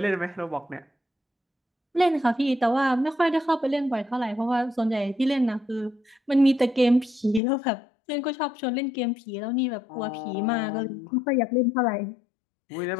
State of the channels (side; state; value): right; drops out; at 7.4 s